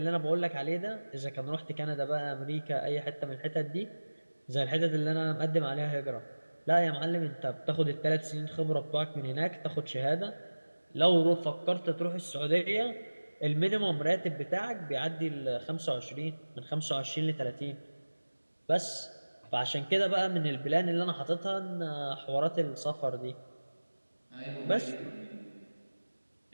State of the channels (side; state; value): both; inverted; correlation -1.00